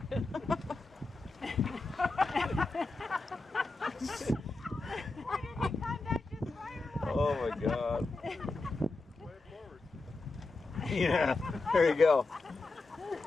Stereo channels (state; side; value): quieter; right; 3.4 dB